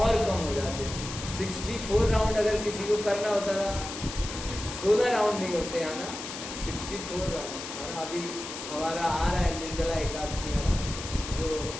कम हो जाते। 64 राउंड अगर किसी को करना होता था, 16 राउंड नहीं होते है ना, 64 राउंड है ना। अभी हमारा आ रहा है निर्जला एकादशी, है ना, जो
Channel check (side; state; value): left; noise; hiss, 9 dB below the sound